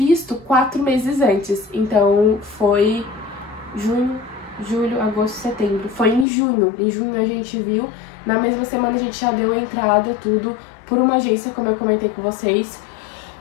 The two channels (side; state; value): right; drops out; at 6.2 s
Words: 4 meses antes. Então foi junho, julho, agosto, setembro. Foi em junho. Em junho a gente viu. Na mesma semana a gente já deu entrada, tudo, por uma agência, como eu comentei com vocês.